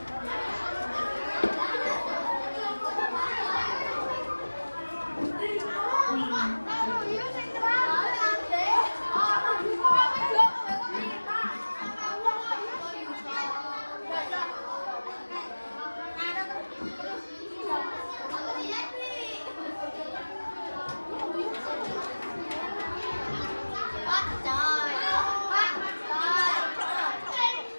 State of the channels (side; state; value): both; inverted; correlation -1.00